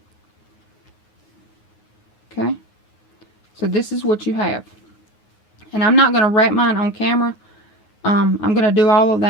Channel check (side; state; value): right; late; 9.5 ms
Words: Okay, so this is what you have. And I'm not going to wrap mine on camera. I'm going to do all of